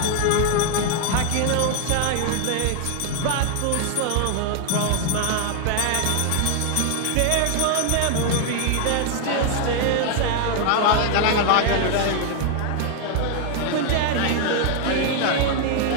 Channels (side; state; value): both; different; correlation 0.00